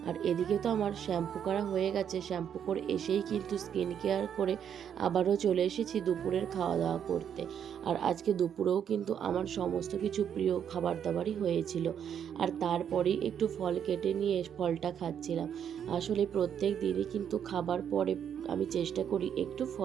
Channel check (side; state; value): left; quieter; 8.6 dB